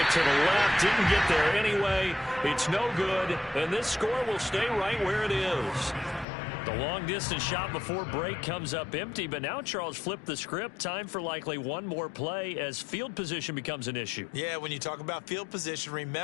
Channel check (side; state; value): right; drops out; at 6.2 s